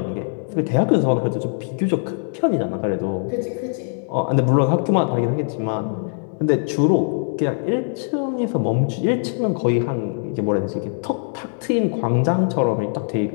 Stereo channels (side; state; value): right; silent; 64 dB below the other